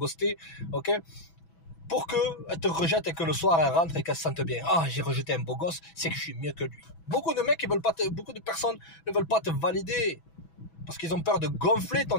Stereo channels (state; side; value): late; right; 6.1 ms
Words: ok, pour qu'elle te rejette et que le soir elle rentre et qu'elle se sente bien. Ah, j'ai rejeté un beau gosse, c'est que je suis mieux que lui. Beaucoup de mecs, beaucoup de personnes ne veulent pas te valider parce qu'ils ont peur de gonfler